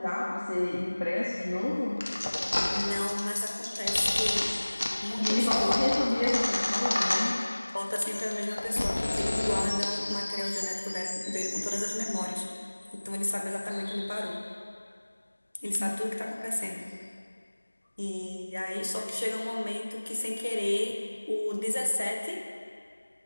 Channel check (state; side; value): inverted; both; correlation -1.00